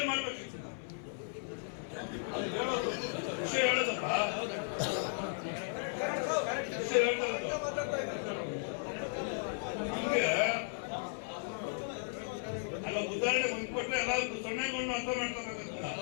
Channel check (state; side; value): silent; right; 54 dB below the other